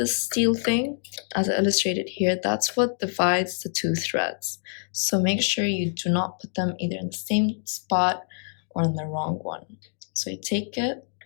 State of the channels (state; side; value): silent; right; digital silence